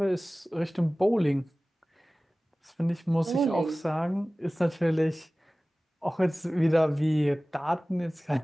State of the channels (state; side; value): normal; both; correlation 0.98